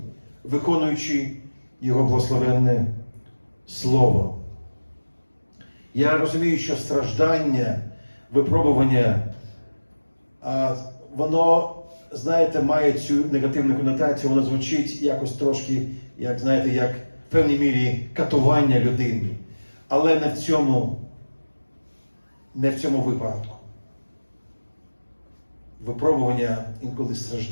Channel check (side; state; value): both; inverted; correlation -1.00